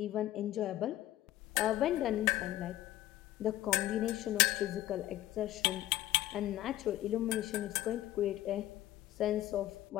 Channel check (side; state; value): right; quieter; 14.6 dB